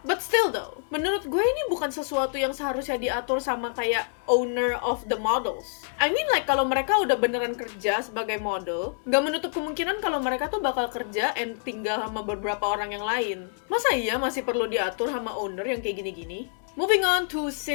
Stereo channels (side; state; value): right; silent; 60 dB below the other